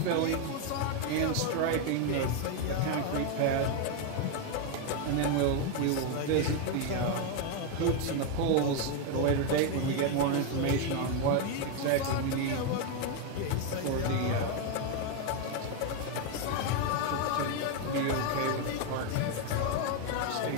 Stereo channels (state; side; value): different; both; correlation 0.01